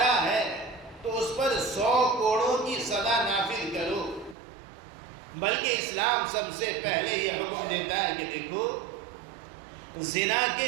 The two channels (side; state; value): left; drops out; at 4.4 s